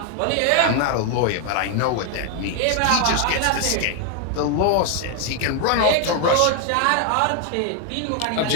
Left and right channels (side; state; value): both; different; correlation 0.01